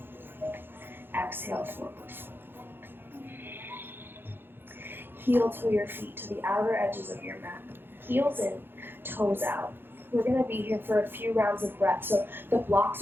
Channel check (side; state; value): left; late; 0.10 ms